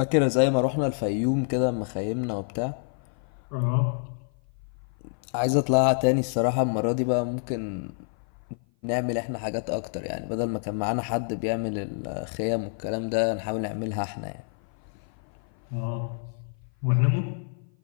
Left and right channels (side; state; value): right; silent; 56 dB below the other